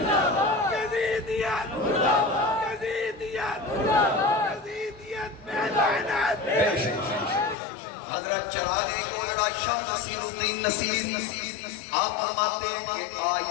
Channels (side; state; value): right; drops out; at 7.6 s